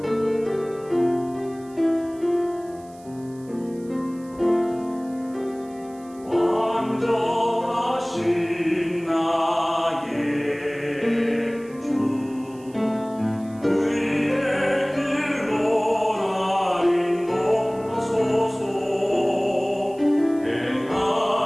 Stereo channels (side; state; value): right; noise; hiss, 26 dB below the sound